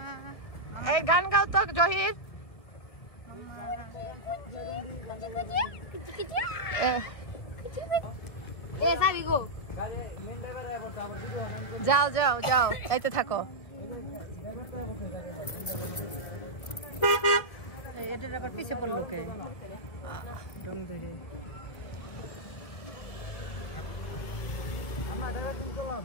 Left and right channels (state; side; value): late; right; 2.1 ms